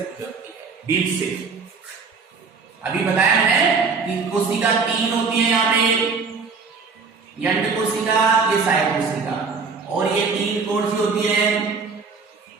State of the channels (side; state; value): left; quieter; 4.9 dB